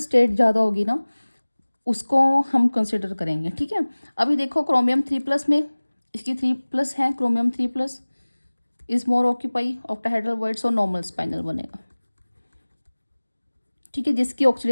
ज़्यादा होगी ना उसको हम कंसिडर करेंगे, ठीक है। अभी देखो क्रोमियम 3+ में इसकी 3+ है, chromium 3+ is more occupy octahedral void, so normal spinal बनेगा, ठीक है। जिसकी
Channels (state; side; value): inverted; both; correlation -1.00